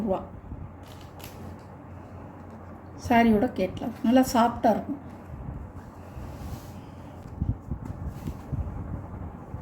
ரூபா. சாரியோட கேட்லாக் நல்லா சாஃப்டாக இருக்கும்.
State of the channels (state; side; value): identical; both; correlation 1.00